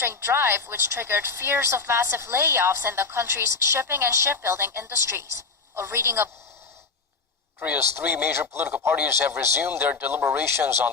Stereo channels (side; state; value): right; quieter; 4.6 dB